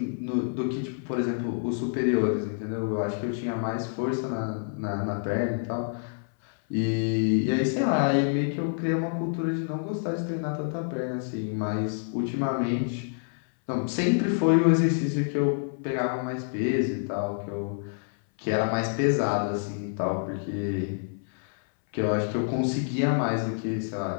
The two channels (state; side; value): silent; right; 60 dB below the other